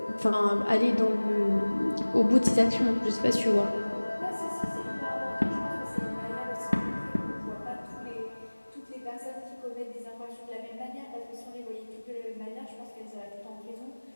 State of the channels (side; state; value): both; inverted; correlation -1.00